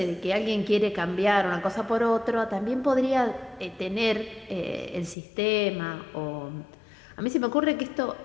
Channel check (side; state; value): right; drops out; at 5.2 s